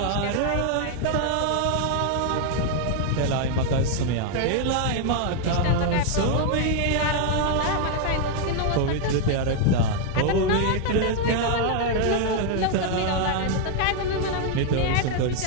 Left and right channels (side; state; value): both; different; correlation 0.00